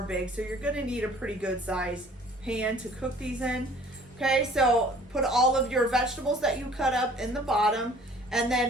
big, so you're going to need a pretty good size pan to cook these in. Okay, so put all of your vegetables that you cut up in the bottom and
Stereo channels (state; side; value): normal; both; correlation 0.53